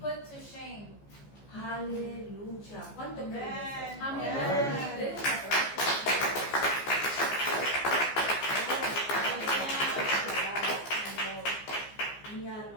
put to shame. Aleluya. ¿Cuánto creen eso? How many Amén. believe this? Mi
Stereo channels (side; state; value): right; late; 14 ms